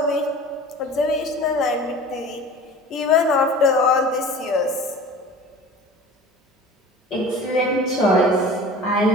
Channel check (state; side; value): normal; both; correlation 0.40